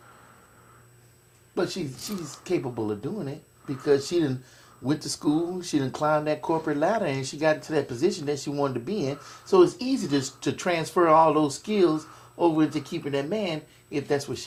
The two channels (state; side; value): identical; both; correlation 1.00